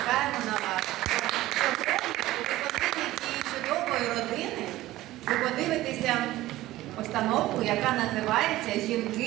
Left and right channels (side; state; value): left; quieter; 16.3 dB